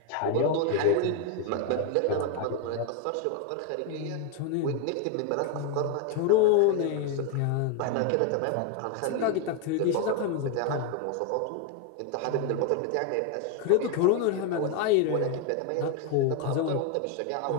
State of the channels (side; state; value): both; different; correlation 0.01